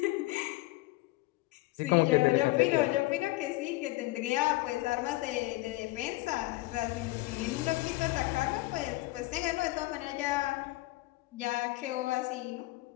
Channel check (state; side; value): quieter; right; 20.1 dB